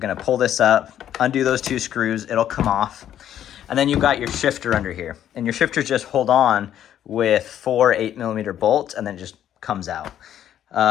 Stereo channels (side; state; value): right; quieter; 10.7 dB